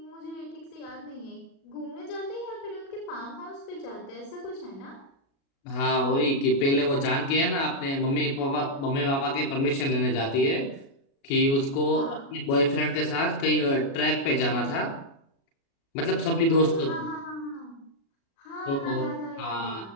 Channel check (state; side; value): late; right; 36 ms